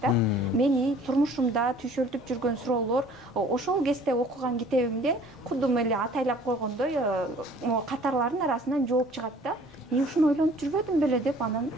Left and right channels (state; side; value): normal; both; correlation 0.52